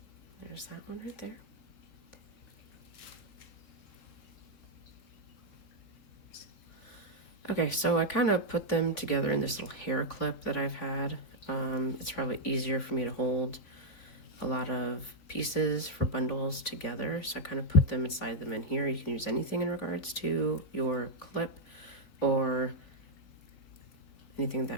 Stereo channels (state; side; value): late; right; 3.5 ms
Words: there's that one right there. Okay, so I kind of put them together in this little hair clip that I've had. It's probably easier for me to hold a lot of pieces for bundles together, so I kind of put them inside them in here. You can use anything in regards to your clip or anything